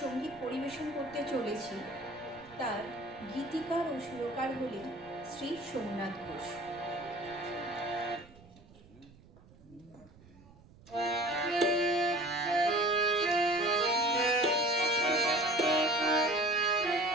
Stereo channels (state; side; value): noise; right; rumble, 24 dB below the sound